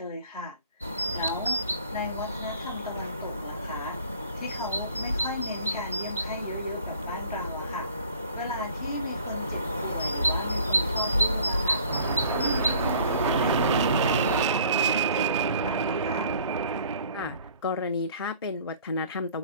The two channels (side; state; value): both; inverted; correlation -0.53